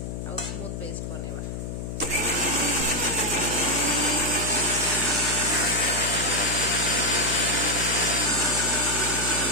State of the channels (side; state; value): left; noise; hum, 6 dB below the sound